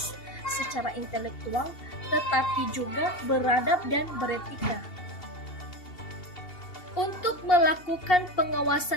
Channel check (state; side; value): late; right; 2.7 ms